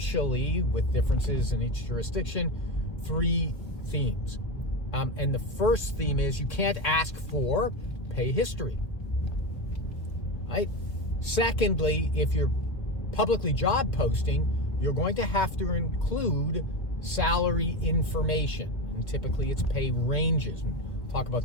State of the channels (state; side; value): late; right; 1.4 ms